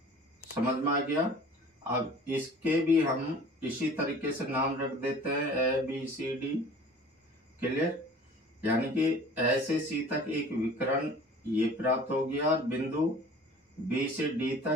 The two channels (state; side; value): normal; both; correlation 0.46